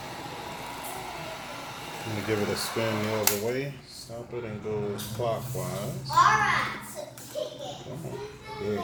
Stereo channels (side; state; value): both; identical; correlation 1.00